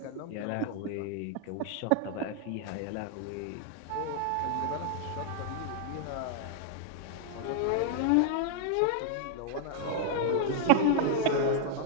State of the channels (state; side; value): different; both; correlation 0.00